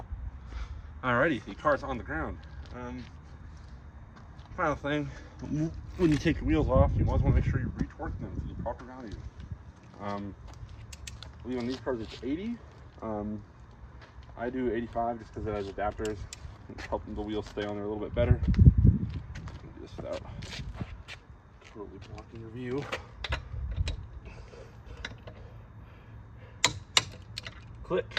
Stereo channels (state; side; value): identical; both; correlation 1.00